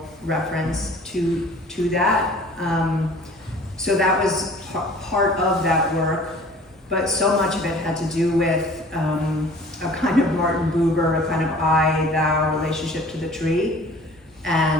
reference to that. So that was part of that work, but so much of it had to do with a kind of Martin Buber, a kind of I-thou relationship to the tree.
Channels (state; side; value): normal; both; correlation 0.48